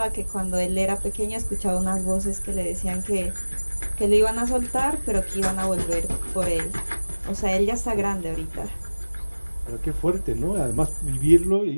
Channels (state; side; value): inverted; both; correlation -1.00